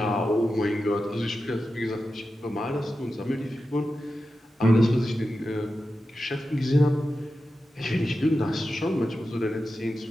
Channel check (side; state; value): both; normal; correlation 0.91